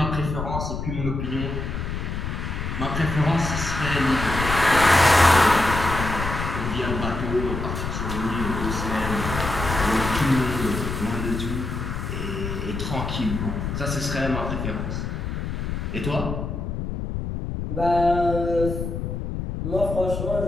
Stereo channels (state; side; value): noise; left; rumble, 4 dB below the sound